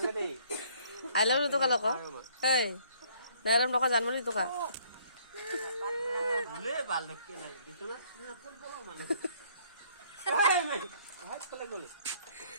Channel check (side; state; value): both; inverted; correlation -0.61